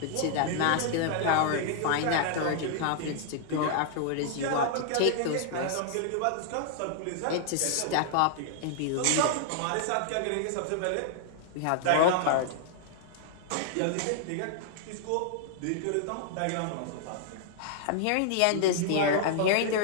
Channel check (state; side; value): different; both; correlation -0.01